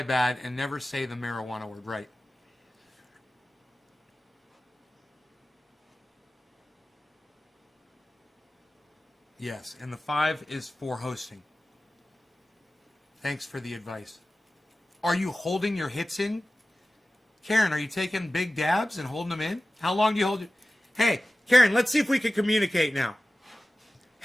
bad, and never say the marijuana word, right? Yes, and the 5 is for hosting. Thanks for the advice. Are you holding your hits in? Karen, are you taking big dabs and holding them in? How long do you hold it? Hey, Karen, let's see if we can communicate now.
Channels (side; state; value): both; normal; correlation 0.96